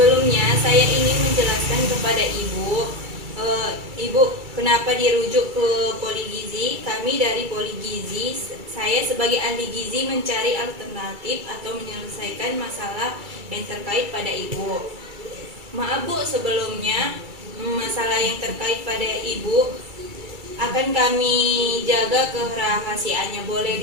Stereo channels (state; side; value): late; left; 2.3 ms